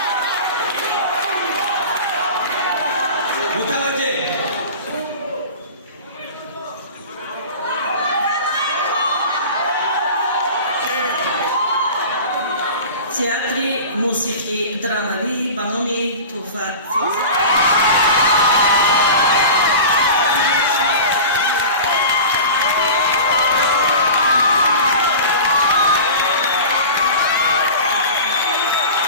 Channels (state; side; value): inverted; both; correlation -0.35